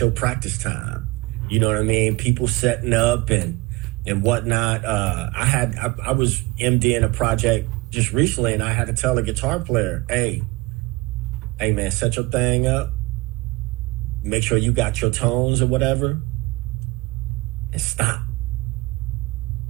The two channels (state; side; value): quieter; left; 22.2 dB